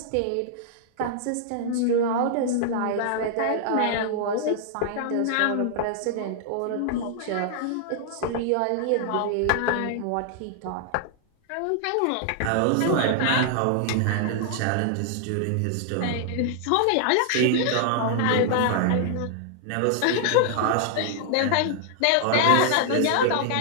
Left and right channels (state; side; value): different; both; correlation 0.00